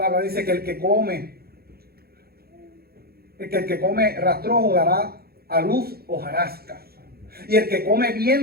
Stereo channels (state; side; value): late; left; 0.45 ms